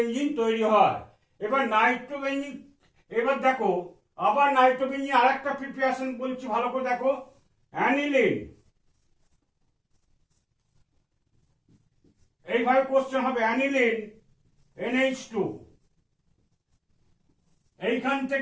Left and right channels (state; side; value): identical; both; correlation 1.00